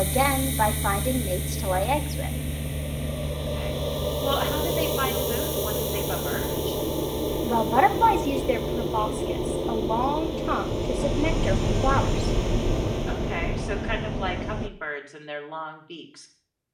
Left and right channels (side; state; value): both; identical; correlation 1.00